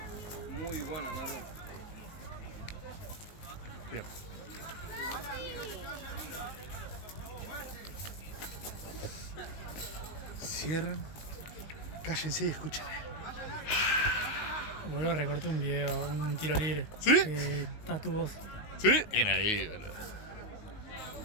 Muy buena, Nardo. Bien. Cierran. Cállense y escuchen. Boludo, recorté un video, un tiro libre. ¿Sí? Está tu voz. ¿Sí? Bien ahí, boludo.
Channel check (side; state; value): right; late; 19 ms